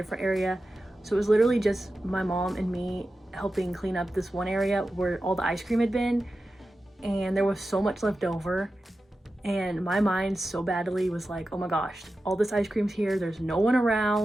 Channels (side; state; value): both; normal; correlation 0.93